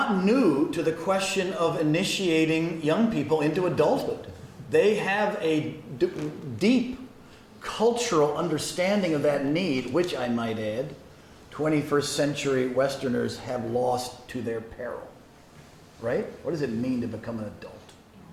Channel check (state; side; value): identical; both; correlation 1.00